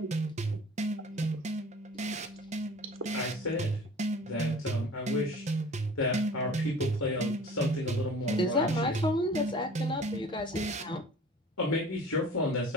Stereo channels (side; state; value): both; normal; correlation 0.45